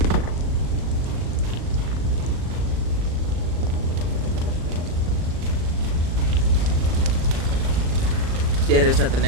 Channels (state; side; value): late; left; 38 ms